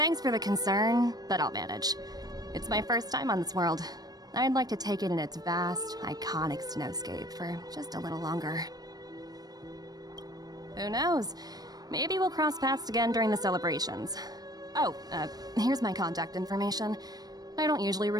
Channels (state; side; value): late; left; 0.19 ms